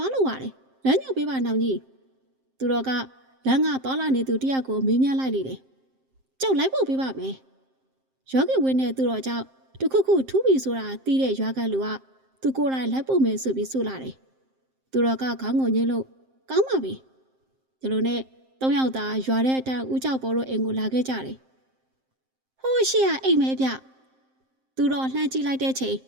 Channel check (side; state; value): left; late; 7.6 ms